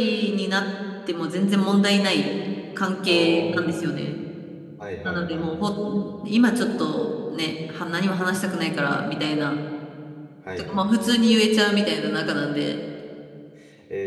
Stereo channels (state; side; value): identical; both; correlation 1.00